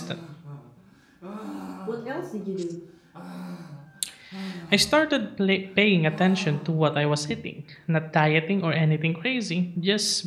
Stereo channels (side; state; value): both; identical; correlation 1.00